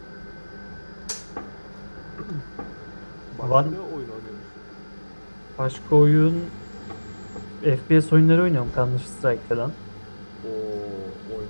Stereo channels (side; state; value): both; inverted; correlation -1.00